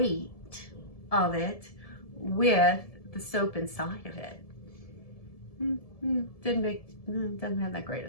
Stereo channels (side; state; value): right; late; 1.7 ms